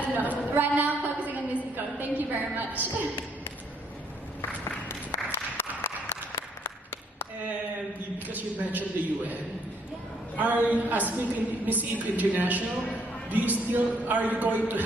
don't know. Right now, I'm focusing on Miss Eco. Thank you very much. And because you mentioned the UN, as Miss Eco International, are you going to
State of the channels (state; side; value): normal; both; correlation 0.68